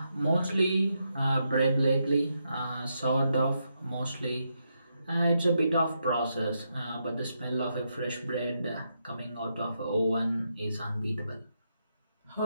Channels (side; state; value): both; inverted; correlation -0.82